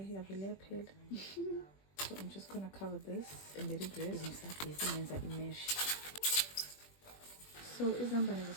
yavele yaphela. So I'm just gonna cover this and let it rest. Ngisabhizi ngenza imesh. So izambane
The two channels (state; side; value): late; right; 21 ms